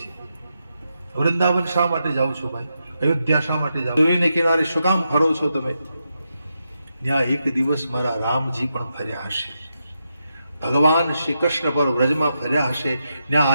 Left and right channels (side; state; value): both; inverted; correlation -0.85